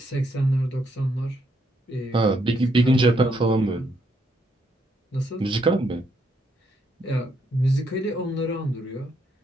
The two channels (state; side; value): normal; both; correlation 0.75